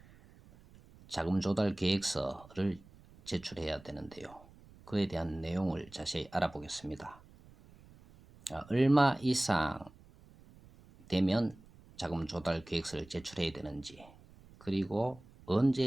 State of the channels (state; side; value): noise; right; rumble, 23 dB below the sound